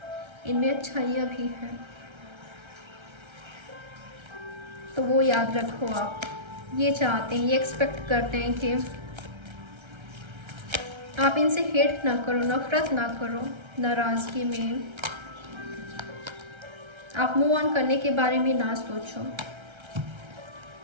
इनमें अच्छाइयाँ भी है, तो वो याद रखो। आप ये चाहते हैं, ये एक्सपेक्ट करते हैं कि आप इनसे हेट ना करो, नफरत ना करो, नाराज़गी में आप मूव ऑन करने के बारे में ना सोचो।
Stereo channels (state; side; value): late; left; 1.3 ms